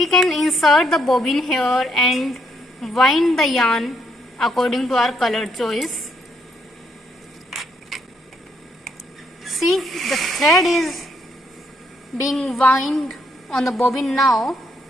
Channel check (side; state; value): both; normal; correlation 0.73